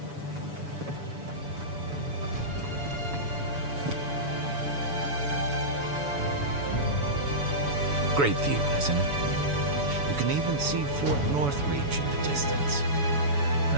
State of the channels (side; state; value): left; late; 7.0 ms